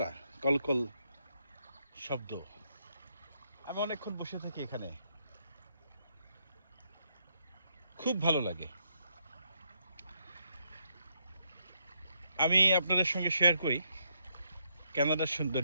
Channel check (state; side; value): inverted; both; correlation -0.76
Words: কলকল শব্দ, আমি অনেকক্ষণ বসে থাকি এখানে, খুব ভালো লাগে। আমি আপনাদের সঙ্গে শেয়ার করি কানাডার